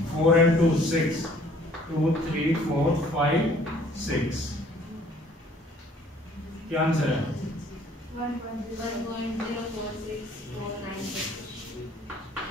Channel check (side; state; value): both; normal; correlation 0.57